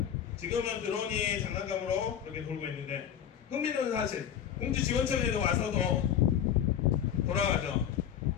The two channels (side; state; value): right; quieter; 9.4 dB